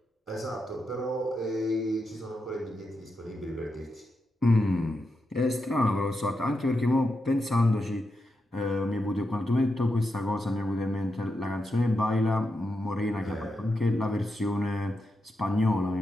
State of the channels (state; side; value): normal; both; correlation 0.86